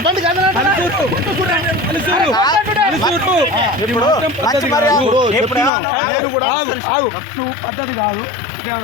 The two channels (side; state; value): right; drops out; at 5.7 s